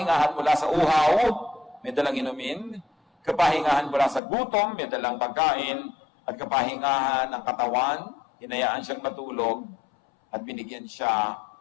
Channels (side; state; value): right; drops out; at 4.2 s